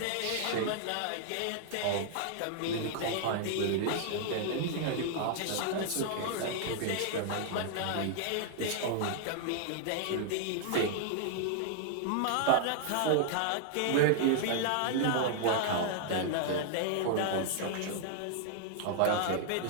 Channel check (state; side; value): different; both; correlation -0.01